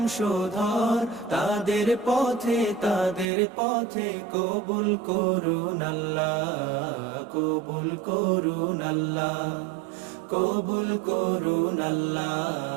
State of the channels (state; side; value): drops out; left; at 3.2 s